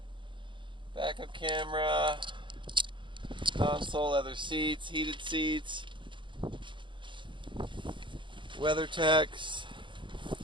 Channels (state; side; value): late; left; 0.23 ms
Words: Backup camera. Console, leather seats, heated seats. WeatherTechs.